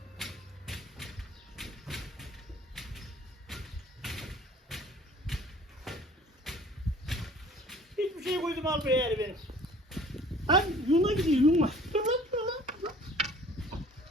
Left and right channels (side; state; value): both; normal; correlation 0.50